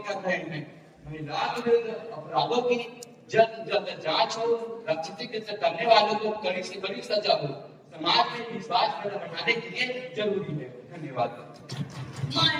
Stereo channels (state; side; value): identical; both; correlation 1.00